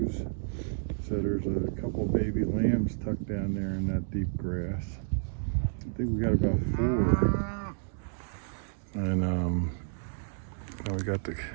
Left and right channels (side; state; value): left; silent; digital silence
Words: So there's a couple baby lambs tucked down there in that deep grass. I think we got about 4. And now we got the